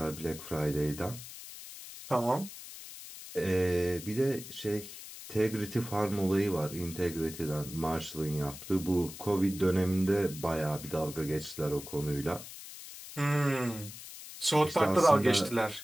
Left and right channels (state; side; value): noise; left; hiss, 13 dB below the sound